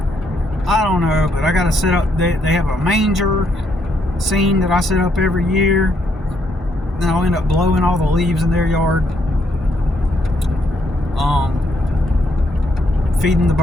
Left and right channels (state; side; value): normal; both; correlation 0.74